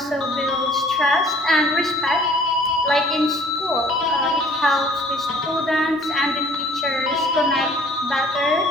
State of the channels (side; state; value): both; normal; correlation 0.54